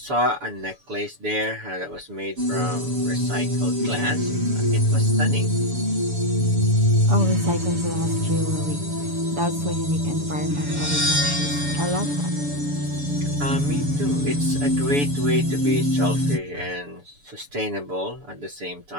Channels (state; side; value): late; left; 7.0 ms